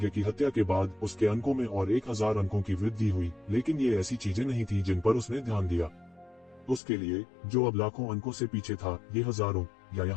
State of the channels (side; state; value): right; drops out; at 6.8 s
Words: की हत्या के बाद उसके अंकों में और 1000 अंकों की वृद्धि हुई, लेकिन ये ऐसी चीजें नहीं थी जिन पर उसने ध्यान दिया। उसके लिए, जो अब लाखों अंकों से पीछे था, ये हजारों या